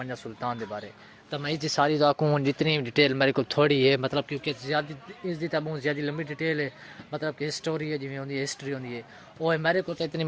سلطان دے بارے تو میں اس ساری کو جتنی ڈیٹیل میرے کو تھوڑی ہے، مطلب کیونکہ زیادہ اس دی تو بہت زیادہ لمبی ڈیٹیل ہے، مطلب کہ ہسٹوری ہے جویں ہوندی ہے، ہسٹری ہوندی ہے، وہ میرے کو تو اتنی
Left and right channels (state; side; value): identical; both; correlation 1.00